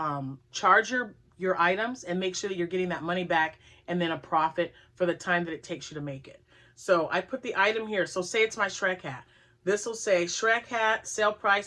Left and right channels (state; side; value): identical; both; correlation 1.00